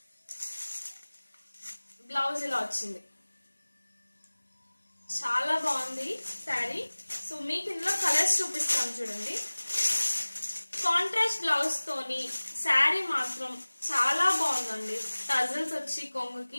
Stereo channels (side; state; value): both; inverted; correlation -1.00